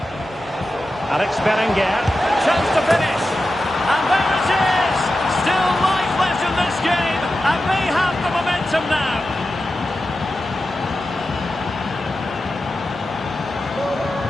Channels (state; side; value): normal; both; correlation 0.92